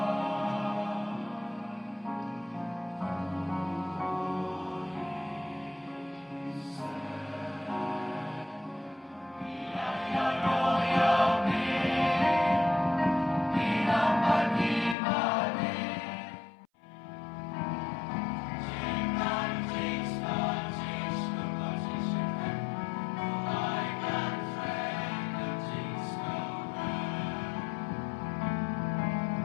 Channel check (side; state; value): right; drops out; at 15.0 s